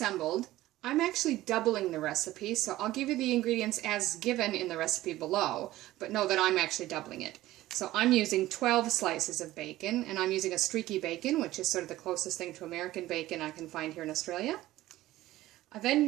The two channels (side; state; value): left; quieter; 16.0 dB